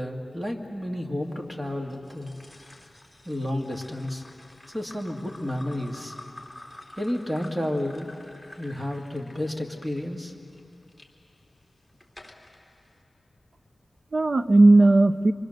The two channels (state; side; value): normal; both; correlation 0.98